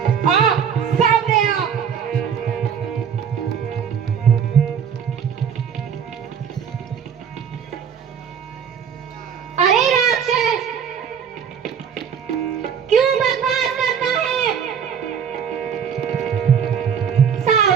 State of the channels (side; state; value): left; quieter; 7.5 dB